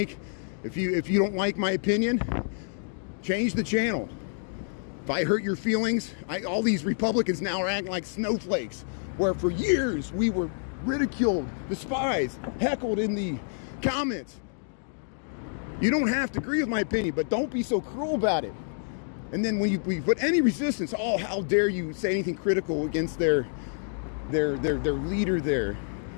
my opinion, change the channel. If I hurt your feelings, all these Republicans now are acting like snowflakes, where for years we were ridiculed, despised, heckled in the comments. You don't have to agree with my opinion, but don't be so cruel about it. And then when we put any resistance, oh, how dare you say anything critical against their leader there.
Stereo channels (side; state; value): right; silent; digital silence